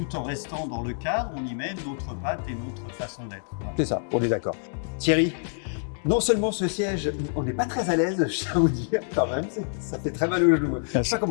en restant dans le cadre, on y met notre patte et notre façon d'être. Voilà. C'est ça, on est d'accord. Thierry, non seulement ce siège, on n'est pas très à l'aise, je tiens à vous dire, quand même, ça fait très mal au genou. Je sais pas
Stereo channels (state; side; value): silent; right; 60 dB below the other